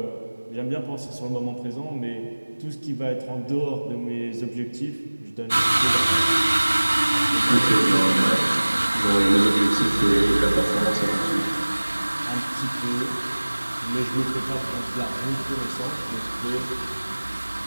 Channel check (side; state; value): both; inverted; correlation -1.00